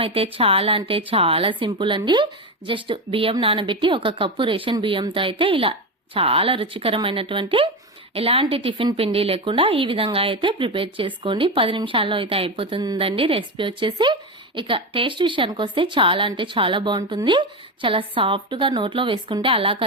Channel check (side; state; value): both; normal; correlation 0.16